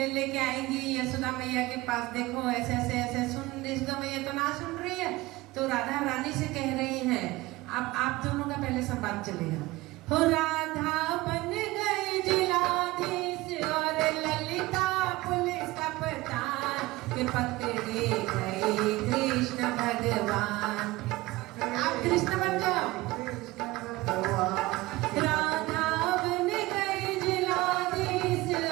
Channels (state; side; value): quieter; left; 19.9 dB